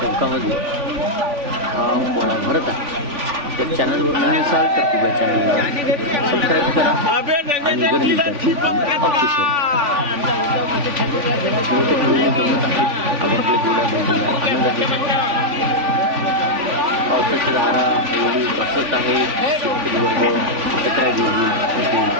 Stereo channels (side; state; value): left; late; 3.5 ms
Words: हा पोळा भरत आहे। तर चॅनलवर नवीन असाल तर कृपया चॅनलला सबस्क्राईब करा आणि गर्दी ऑप्शन जमत आहेत। आपल्या जोड्या बघूया, आनंद आहे। पावसाची धारा एवढी बसत आहे, शेतकरी वर्ग एकत्र